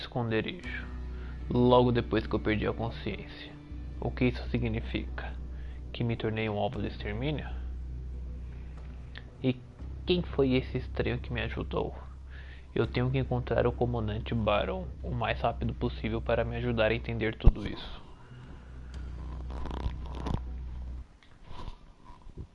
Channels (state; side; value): identical; both; correlation 1.00